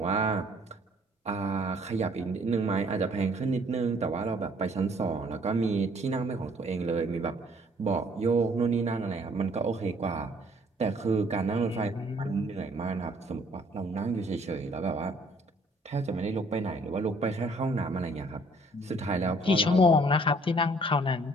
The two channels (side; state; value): both; normal; correlation 0.60